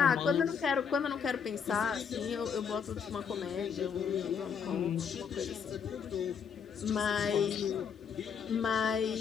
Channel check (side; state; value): right; quieter; 6.8 dB